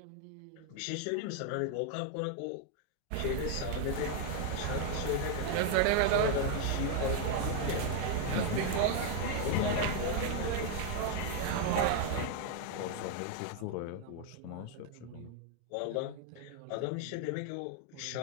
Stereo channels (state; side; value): different; both; correlation 0.00